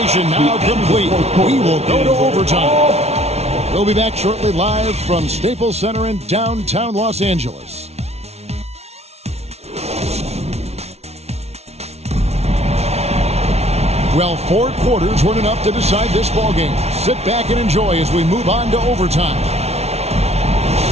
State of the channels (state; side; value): late; left; 0.31 ms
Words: now complete. We will go to overtime. We'll be back shortly live from Staples Center in downtown Los Angeles. Well, 4 quarters weren't enough to decide this ballgame. Sit back and enjoy as we move on to overtime.